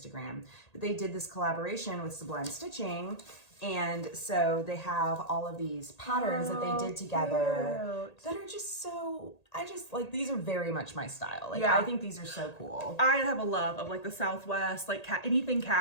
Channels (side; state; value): right; late; 1.8 ms